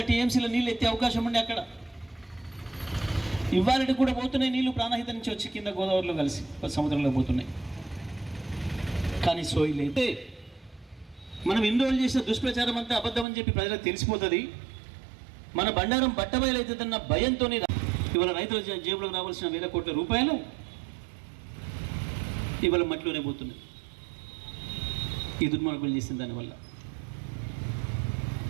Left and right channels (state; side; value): drops out; left; at 13.2 s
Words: టీఎంసీల నీళ్ళు ఎత్తే అవకాశం ఉండి అక్కడ ఇవాళకి కూడా పోతున్నాయి నీళ్లు, ప్రాణహిత నుంచి వచ్చి కింద గోదావరిలో కలిసి సముద్రంలో పోతున్నాయి. కానీ సోయి లేదు. మనం ఎన్ని రోజులు చేసిన దుష్ప్రచారం అంతా అబద్ధం అని చెప్పి ప్రజలకు తెలిసిపోతుంది. మన బండారం బట్టబయలవుతుందన్న భయంతో ఇవాళ రైతుల జేబులకు రావాల్సిన 1,000 కోట్ల రూపాయలు ఇవాళ మట్టిలోనే పోతున్నాయి. ఈ దుర్మార్గులు చేసిన దానివల్ల